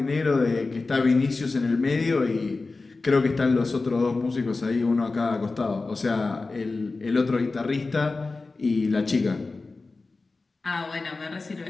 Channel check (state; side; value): quieter; right; 3.7 dB